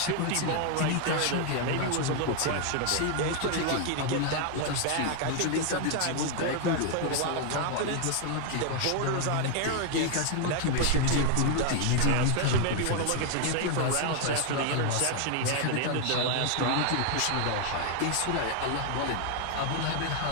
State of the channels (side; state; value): both; different; correlation 0.00